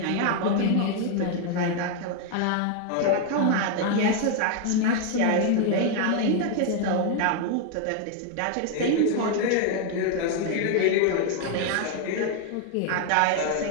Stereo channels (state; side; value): different; both; correlation 0.01